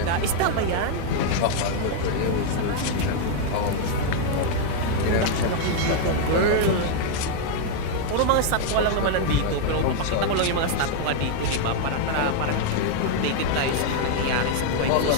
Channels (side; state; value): both; different; correlation 0.00